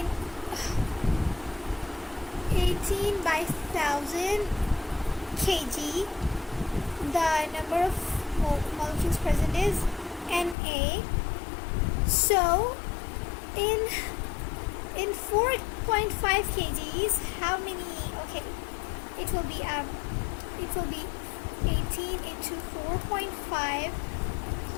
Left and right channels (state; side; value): drops out; right; at 10.6 s